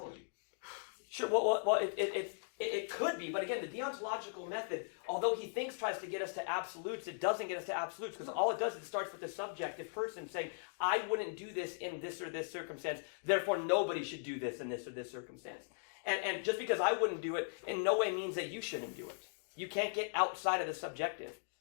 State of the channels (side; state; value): right; silent; digital silence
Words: Sure, well, it could be, but again, the deontological method, although he tries to get us to absolutes, it doesn't get us to absolutes, because all it does is it starts with the subjective person saying, I wouldn't do this in this or this circumstance, therefore nobody should do this in this or this circumstance. And just because I wouldn't do it, in no way means that you shouldn't do it. You can't get outside of the subjective.